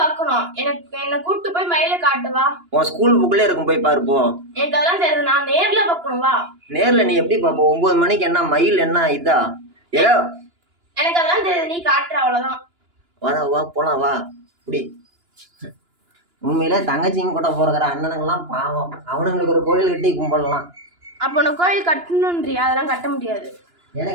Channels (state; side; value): late; left; 2.9 ms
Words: என்ன கூட்டி போய் மயில காட்டுவா. உன் ஸ்கூல் புக்ல இருக்கும், போய் பாரு போ. எனக்கு அதெல்லாம் தெரியாது, நான் நேர்ல பார்க்கணும். வா. நேர்ல நீ எப்படி பாப்ப? 9 மணிக்கு என்ன மயில் என்ன இதா? ஏதோ எனக்கு அதெல்லாம் தெரியாது, நீ காட்டுற அவ்வளவுதான். வா வா போலாம் வா. இப்படி உண்மையிலே தங்கச்சிங்க கூட போறக்கிற அண்ணனுங்கெல்லாம் பாவம், அவனுங்களுக்கு ஒரு கோயில் கட்டி கும்பிடலாம். அப்போ நான் கோயில் கட்டணுன்றியா? அதெல்லாம் கட்ட முடியாது.